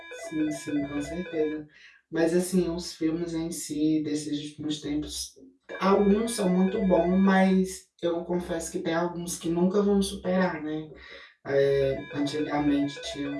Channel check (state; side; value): identical; both; correlation 1.00